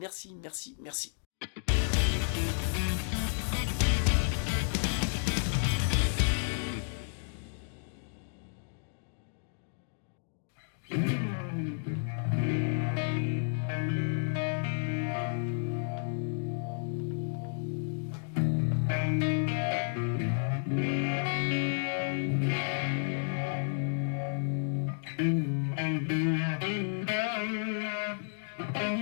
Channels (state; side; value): silent; right; digital silence